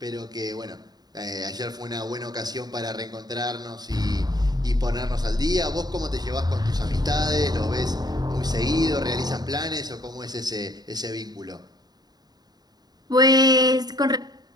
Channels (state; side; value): late; left; 0.19 ms